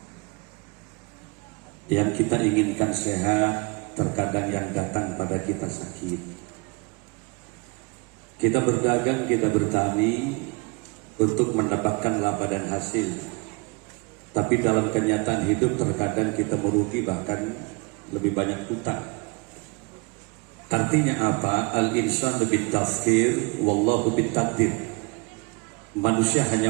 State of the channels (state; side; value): quieter; left; 29.4 dB